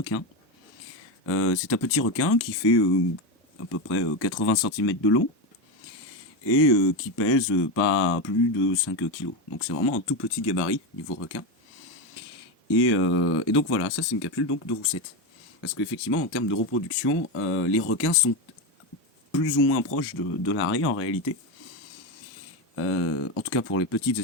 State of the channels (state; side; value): normal; both; correlation 0.13